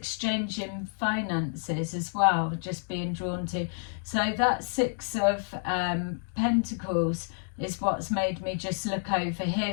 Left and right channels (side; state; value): right; silent; digital silence